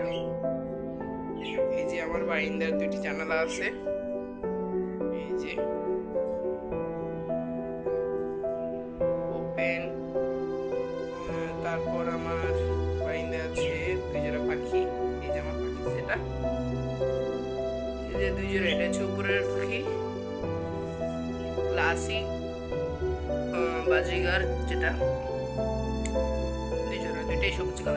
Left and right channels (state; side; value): identical; both; correlation 1.00